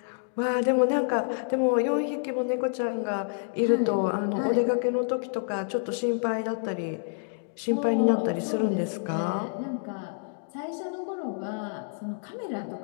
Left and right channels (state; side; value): silent; right; digital silence